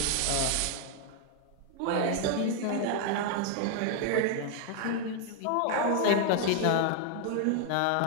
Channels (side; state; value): both; different; correlation 0.00